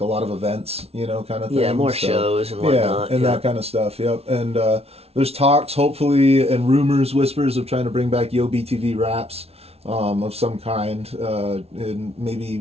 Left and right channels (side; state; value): left; late; 0.30 ms